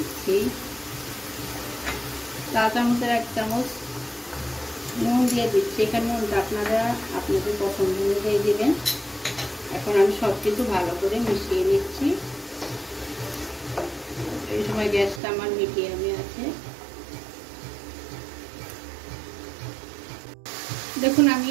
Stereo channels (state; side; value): drops out; left; at 15.2 s